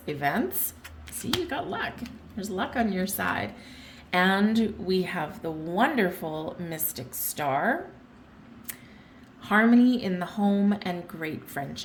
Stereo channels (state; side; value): identical; both; correlation 1.00